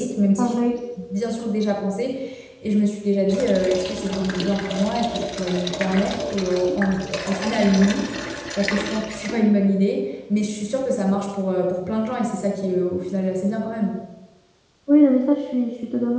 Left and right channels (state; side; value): identical; both; correlation 1.00